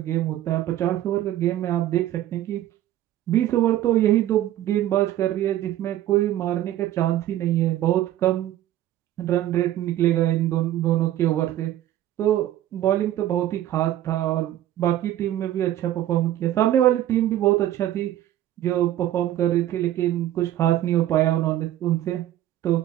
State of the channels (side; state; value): left; quieter; 13.1 dB